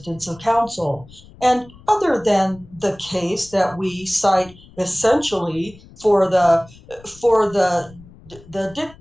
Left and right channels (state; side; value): noise; left; rumble, 23 dB below the sound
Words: of counsel. And other than the case that we cite essentially for the